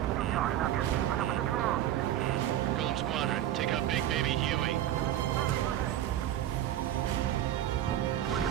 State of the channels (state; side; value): quieter; left; 12.2 dB